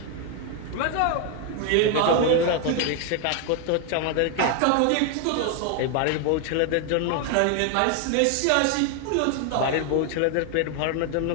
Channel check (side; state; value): both; different; correlation 0.01